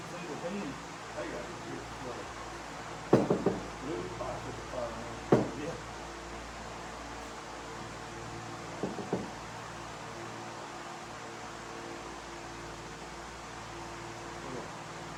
see the pin. They got it here. Really plastic fire. Yeah.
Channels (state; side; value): identical; both; correlation 1.00